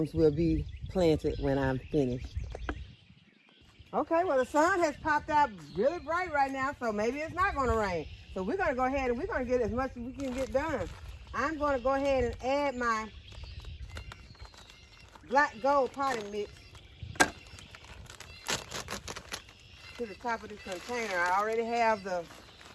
will be planted when I'm finished. Okay, well the sun has popped out really bright right now, so maybe it's not going to rain. So we're going to go ahead and we're going to get as much as we can get done. I'm going to go ahead and add my black gold potting mix to the top of this container. I already have the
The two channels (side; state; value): both; identical; correlation 1.00